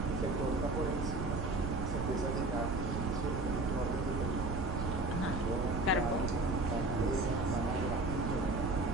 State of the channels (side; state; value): right; noise; rumble, 3 dB below the sound